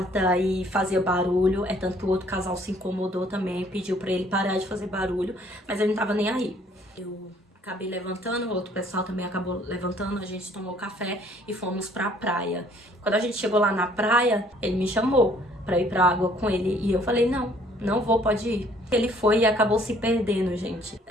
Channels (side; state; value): both; normal; correlation 0.60